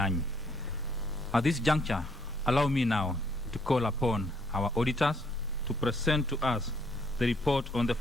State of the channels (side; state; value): both; normal; correlation 0.68